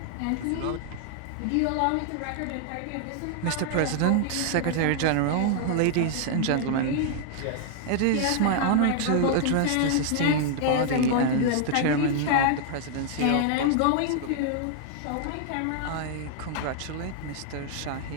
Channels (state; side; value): different; both; correlation 0.00